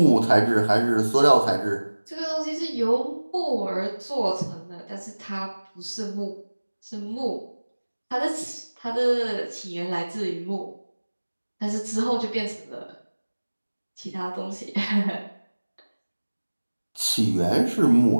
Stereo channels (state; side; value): inverted; both; correlation -1.00